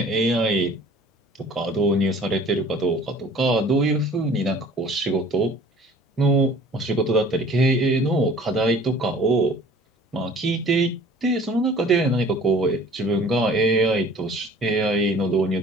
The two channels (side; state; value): both; normal; correlation 0.49